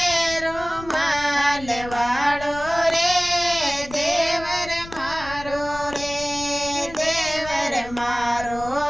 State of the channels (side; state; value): left; noise; rumble, 15 dB below the sound